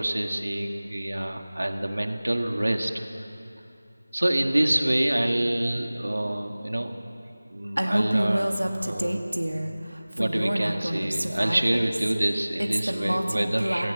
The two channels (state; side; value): inverted; both; correlation -0.99